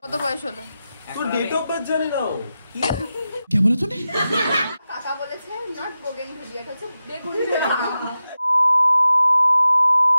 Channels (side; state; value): both; inverted; correlation -0.91